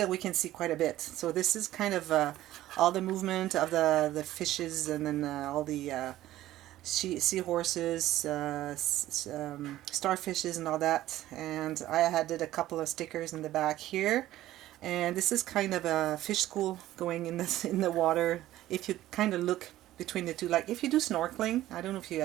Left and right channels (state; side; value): quieter; left; 14.6 dB